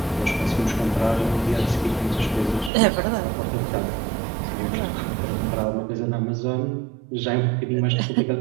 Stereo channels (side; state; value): left; drops out; at 2.7 s